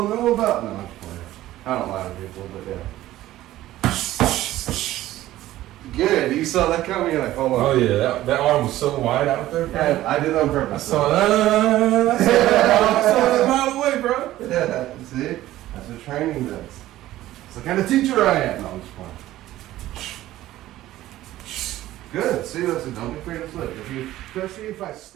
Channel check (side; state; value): left; quieter; 14.9 dB